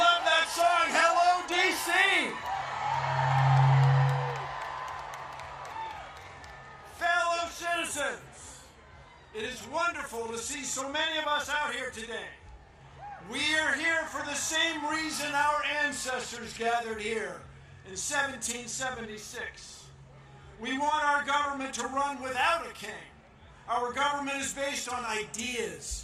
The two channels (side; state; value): both; identical; correlation 1.00